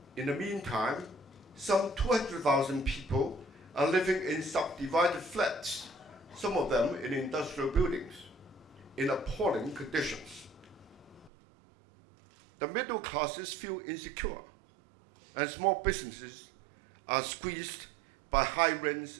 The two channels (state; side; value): drops out; left; at 11.3 s